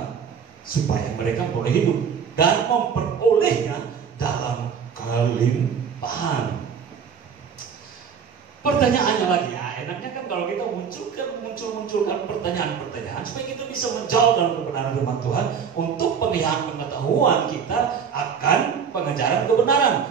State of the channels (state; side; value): quieter; left; 6.9 dB